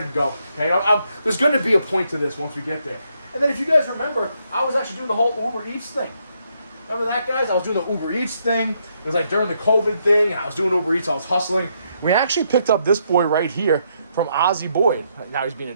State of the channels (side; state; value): both; inverted; correlation -0.76